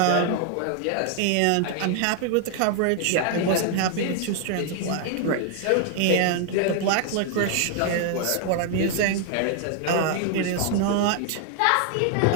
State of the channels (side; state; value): both; different; correlation 0.00